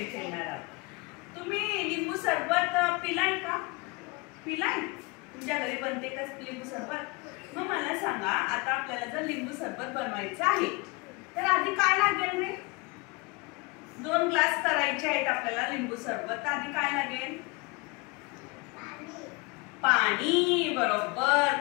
खेळणार आहोत. तुम्ही लिंबू सरबत पिलाय का? पिलाय? तुमच्या घरी बनते का लिंबू सरबत? मग मला सांगा, आता आपल्याला जर लिंबू सरबत बनवायचं आहे तर आधी काय लागेल रे? 2 ग्लास करायचे आहेत आपल्याला लिंबू सरबत. आधी काय लागेल? पाणी. बरोबर,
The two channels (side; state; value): right; quieter; 27.5 dB